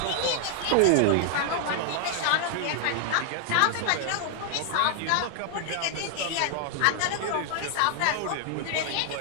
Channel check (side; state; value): both; different; correlation 0.00